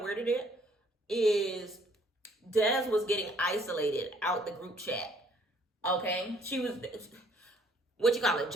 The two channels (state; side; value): normal; both; correlation 0.63